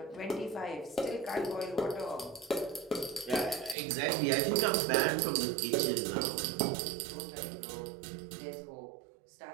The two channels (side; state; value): left; drops out; at 3.8 s